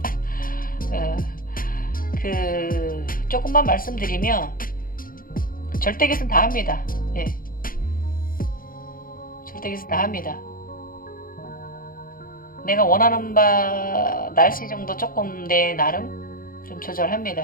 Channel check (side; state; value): right; late; 0.41 ms